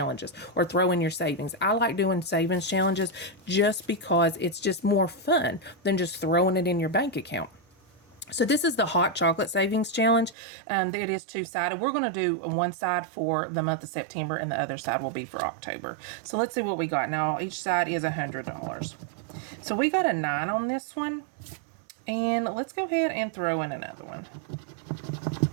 or throw in your savings. I like doing savings challenges just because it's just more fun than just throwing it in your bank account. So this is the hot chocolate savings challenge. It is 2-sided. We're going to do one side for the month of September and the other side will be for October. So let's see what we got. Now each side is $100. So we got a 9 on this one. And let's go ahead and throw in another one.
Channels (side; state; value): left; drops out; at 10.4 s